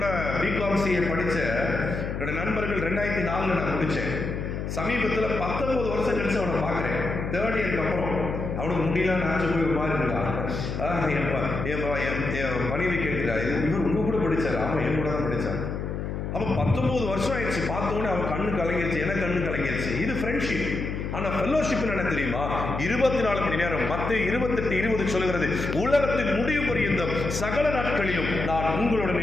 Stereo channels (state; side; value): noise; left; hum, 4 dB below the sound